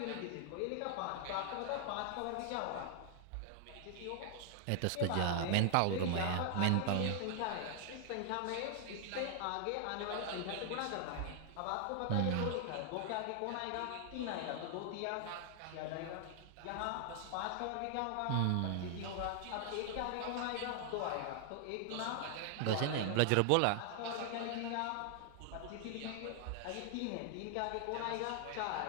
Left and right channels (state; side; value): different; both; correlation 0.00